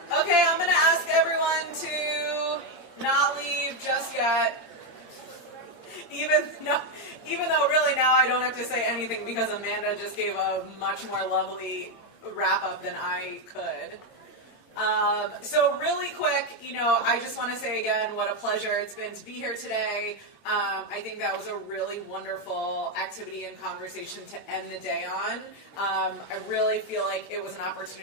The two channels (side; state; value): right; late; 8.7 ms